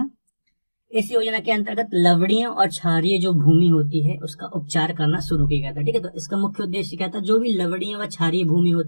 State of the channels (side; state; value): both; inverted; correlation -1.00